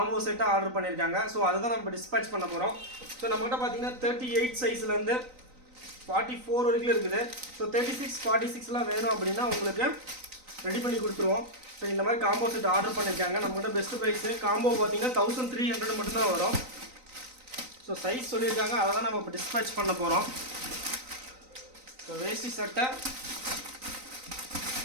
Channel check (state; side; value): late; left; 3.9 ms